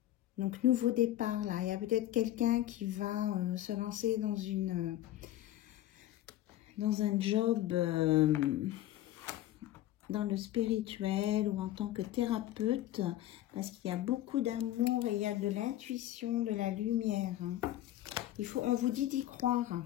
Donc, nouveau départ là. Il y a peut-être quelqu'un qui va se lancer dans un job dans le spirituel ou en tant que thérapeute, parce qu'il y a beaucoup d'amour et il y a de l'intuition, de la lumière. On vous dit d'y croire.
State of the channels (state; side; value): quieter; right; 13.8 dB